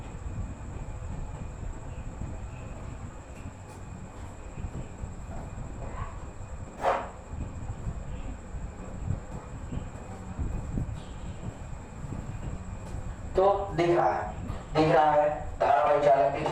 तो दिख रहा है, दिख रहा है धारावाही चालक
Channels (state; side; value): identical; both; correlation 1.00